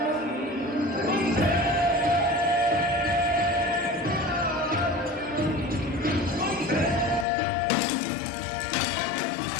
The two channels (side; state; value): right; drops out; at 7.2 s